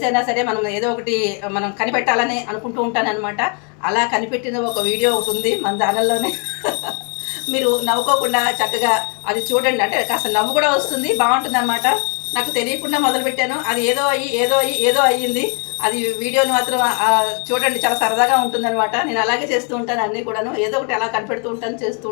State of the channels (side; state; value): right; quieter; 38.8 dB